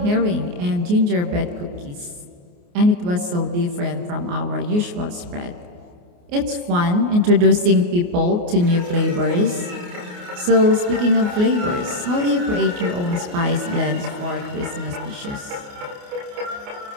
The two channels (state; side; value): late; left; 28 ms